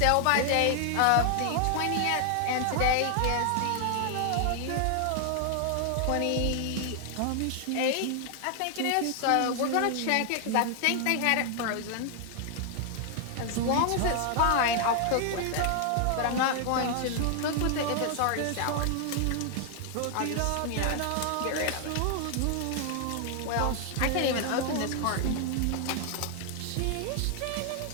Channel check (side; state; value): both; different; correlation 0.00